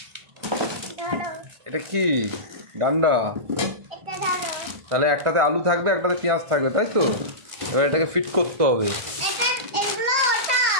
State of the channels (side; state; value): left; late; 1.5 ms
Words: ধরো এটা কি? ডান্ডা। এটা ধরো। তাহলে একটাতে আলু থাকবে, একটাতে পেঁয়াজ থাকবে, তাই তো? এবার এটাকে ফিট করতে হবে। এটা এগুলো